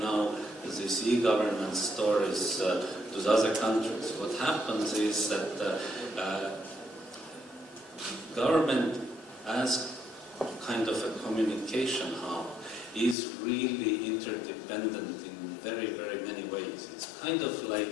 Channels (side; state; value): right; drops out; at 13.2 s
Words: these e-government stories to the other countries, what happens is that government as kind of a communication hub is really interdependent in very, very many ways. It's kind of like